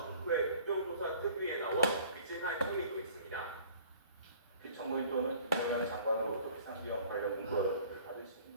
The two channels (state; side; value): inverted; both; correlation -0.52